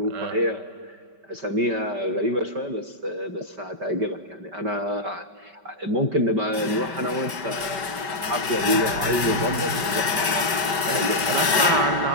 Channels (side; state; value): left; late; 5.2 ms